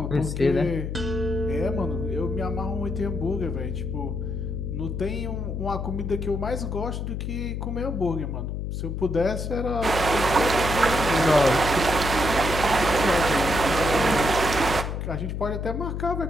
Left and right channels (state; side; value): noise; left; hum, 4 dB below the sound